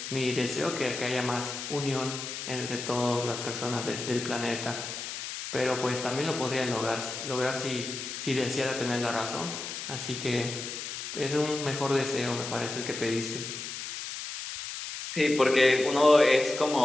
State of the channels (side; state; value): left; noise; hiss, 7 dB below the sound